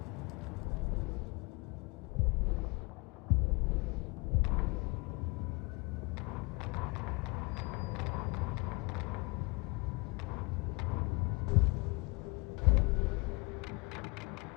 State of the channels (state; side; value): quieter; right; 26.9 dB